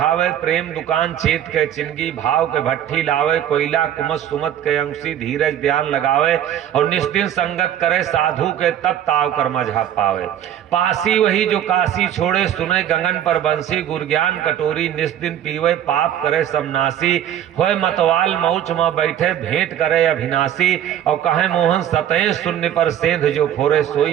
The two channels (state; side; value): quieter; left; 10.6 dB